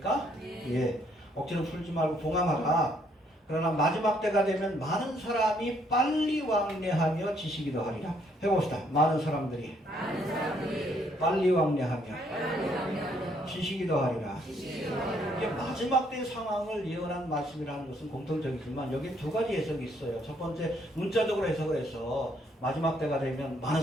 예, 억지로 풀지 말고 봉함하라. 그러나 마지막 때가 되면 많은 사람이 빨리 왕래하며 지식이 더하리라. 해봅시다. 많은 사람들이 빨리 왕래하며 지식이 더하리라. 이게 마지막 때 상황을 예언한 말씀이라는 것은 공통적이지만 여기 두 가지 해석이 있어요. 첫 번째 문자적으로 해석을 해서 마지막 때가 되면 많은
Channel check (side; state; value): both; normal; correlation 0.69